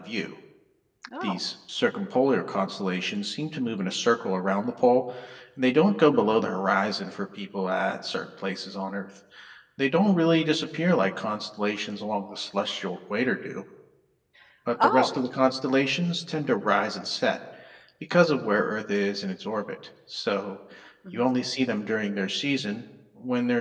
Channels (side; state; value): both; identical; correlation 1.00